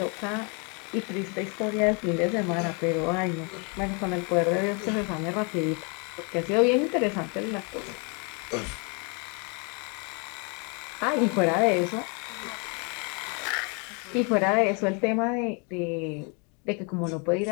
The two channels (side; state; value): right; quieter; 34.5 dB